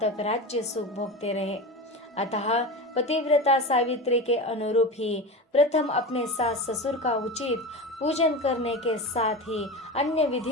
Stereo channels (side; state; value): both; normal; correlation 0.26